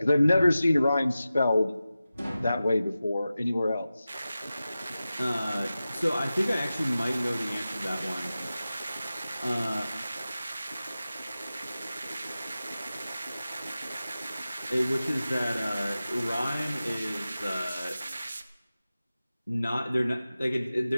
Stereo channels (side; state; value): both; inverted; correlation -0.94